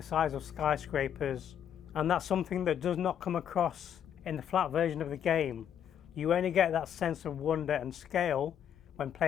size of skyscrapers, and that's something that does not come across in the flat version of the game. You only get that sense of wonder and scale when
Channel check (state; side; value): quieter; right; 9.3 dB